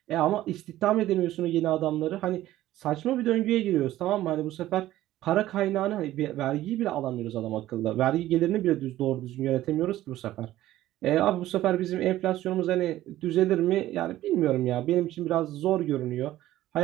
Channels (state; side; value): quieter; left; 14.6 dB